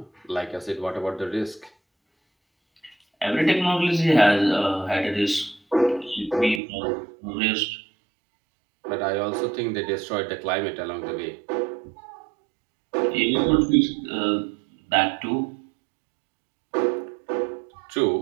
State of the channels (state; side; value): drops out; left; at 6.6 s